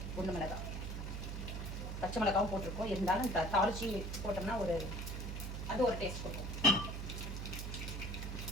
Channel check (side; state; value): right; noise; hum, 4 dB below the sound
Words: குண்டு மிளகாய், பச்சை மிளகாவும் போட்டிருக்கோம். இருந்தாலும் தாளிச்சி போட்டோம்னா அது ஒரு டேஸ்ட் கொடுக்கும்.